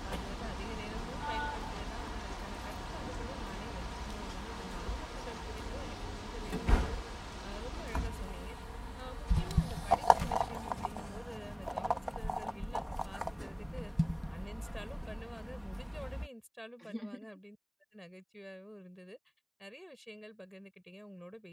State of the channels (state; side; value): identical; both; correlation 1.00